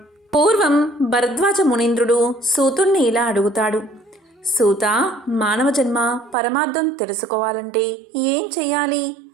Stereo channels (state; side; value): drops out; left; at 6.4 s